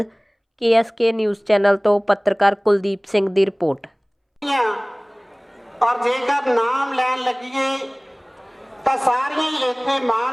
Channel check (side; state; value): both; identical; correlation 1.00